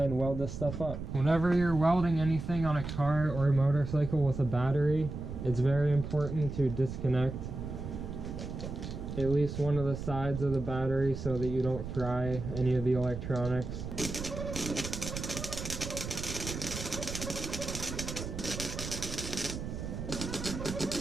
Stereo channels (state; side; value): noise; right; rumble, 7 dB below the sound